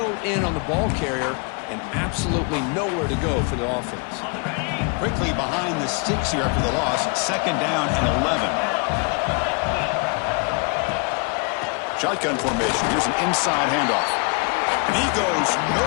in on the ball carrier and absolutely nowhere to go for the offense. Quickly behind the sticks here after the loss. 2nd down and 11. Shotgun formation. Here's an inside handoff. And he goes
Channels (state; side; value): quieter; right; 34.1 dB